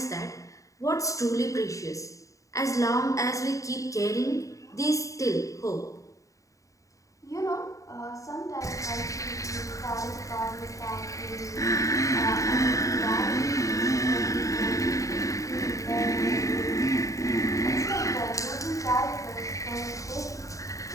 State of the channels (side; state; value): right; late; 0.16 ms